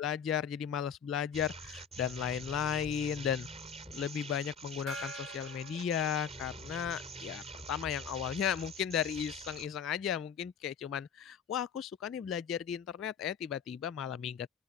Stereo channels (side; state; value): right; quieter; 7.4 dB